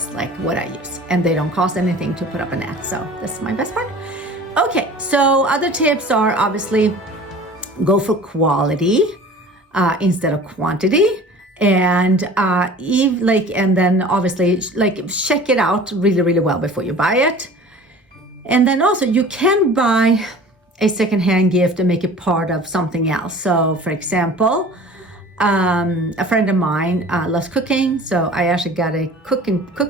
like what I use, and they don't cost anything to put up an ad, so that's my best part. Okay, so other tips are obviously go for quality instead of quantity, and and then obviously check it out really, really well before you buy it. And then also you can buy a secondhand gift and make it part of something else. So for example, a friend of mine loves cooking, so I actually got a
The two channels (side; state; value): both; normal; correlation 0.43